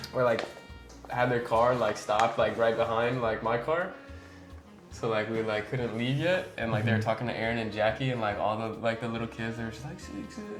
Or like had their car like stopped like right behind like my car. So like we like couldn't leave yet, and like they were talking to Aaron and Jackie, and like all the like the little kids, they were just like 6,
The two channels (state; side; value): identical; both; correlation 1.00